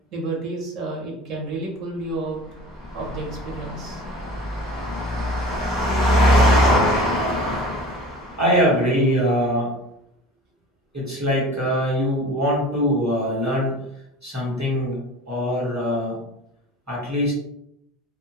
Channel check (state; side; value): normal; both; correlation 0.40